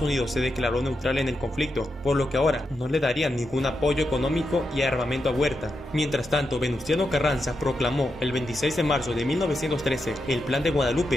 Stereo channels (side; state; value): both; normal; correlation 0.86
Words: Unidos se declaró neutral en el conflicto, por lo que ahora no le darían ningún apoyo económico y armamento a Huerta. Mientras tanto, Venustiano Carranza proclamó el 26 de marzo de 1913 el Plan de